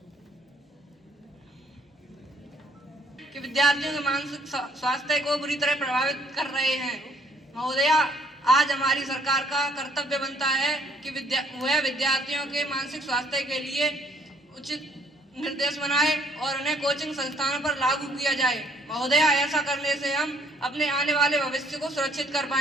कि विद्यार्थियों के मानसिक स्वास्थ्य को बुरी तरह प्रभावित कर रहे हैं। महोदया, आज हमारी सरकार का कर्तव्य बनता है कि वह विद्यार्थियों के मानसिक स्वास्थ्य के लिए उचित निर्देश बनाए और उन्हें कोचिंग संस्थानों पर लागू किया जाए। महोदया, ऐसा करने से हम अपने आने वाले भविष्य को सुरक्षित कर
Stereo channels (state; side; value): normal; both; correlation 0.63